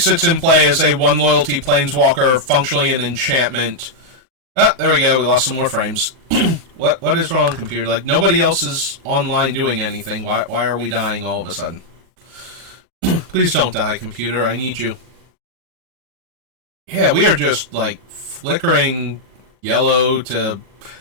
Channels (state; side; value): late; left; 40 ms